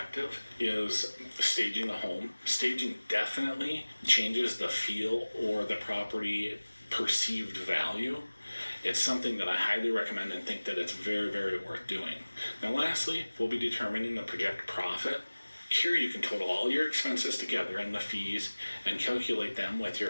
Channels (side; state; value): both; inverted; correlation -1.00